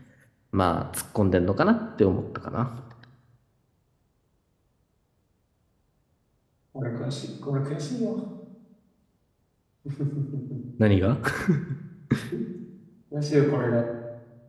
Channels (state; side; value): identical; both; correlation 1.00